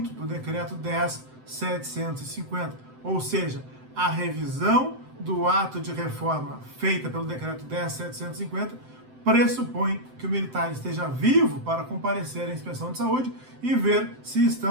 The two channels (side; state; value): left; late; 7.8 ms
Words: do Decreto 10.750. Ou seja, a revisão do ato de reforma feita pelo Decreto 10.750 pressupõe que o militar esteja vivo para comparecer à inspeção de saúde e ver se